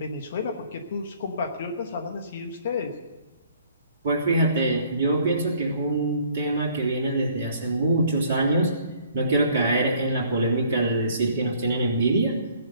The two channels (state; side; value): inverted; both; correlation -0.59